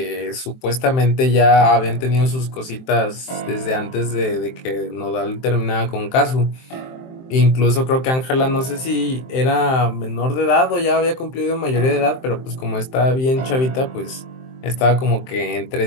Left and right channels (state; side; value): late; right; 23 ms